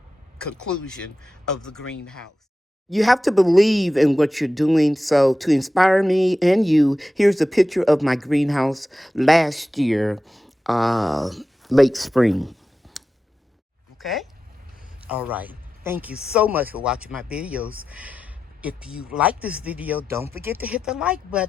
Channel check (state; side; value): normal; both; correlation 0.92